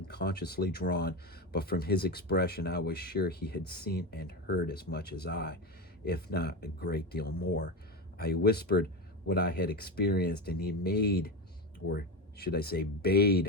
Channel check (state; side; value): normal; both; correlation 0.18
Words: drawn, but from his expression I was sure he had seen and heard as much as I, if not a great deal more. I whispered what I had experienced, and he made, or should I say